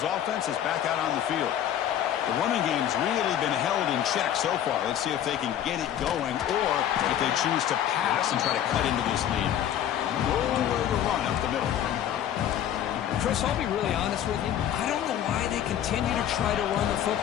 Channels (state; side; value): quieter; right; 10.6 dB